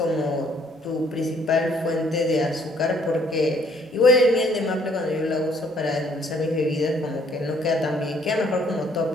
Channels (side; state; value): both; normal; correlation 0.63